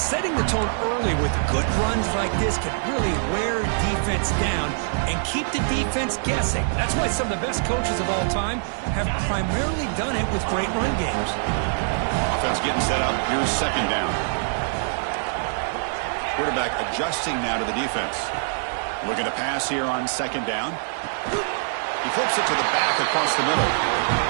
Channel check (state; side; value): silent; left; 63 dB below the other